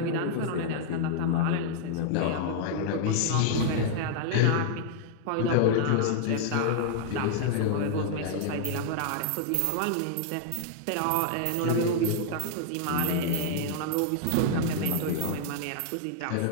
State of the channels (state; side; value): different; both; correlation -0.01